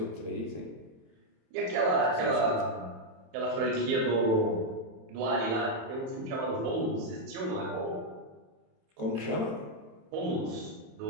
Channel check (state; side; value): late; left; 27 ms